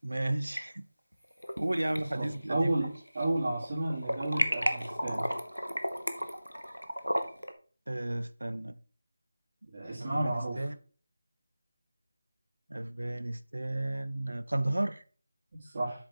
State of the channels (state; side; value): inverted; both; correlation -0.97